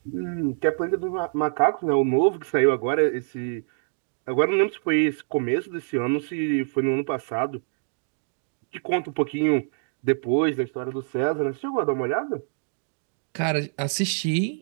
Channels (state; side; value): silent; left; digital silence